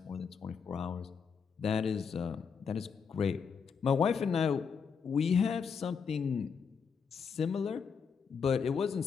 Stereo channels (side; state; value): right; quieter; 6.2 dB